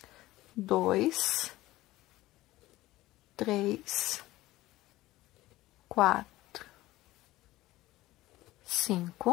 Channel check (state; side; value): quieter; right; 17.2 dB